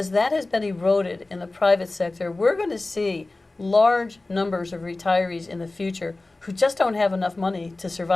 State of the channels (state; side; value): quieter; right; 3.1 dB